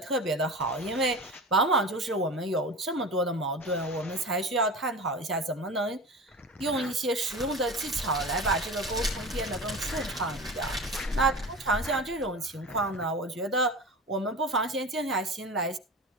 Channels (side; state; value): both; normal; correlation 0.31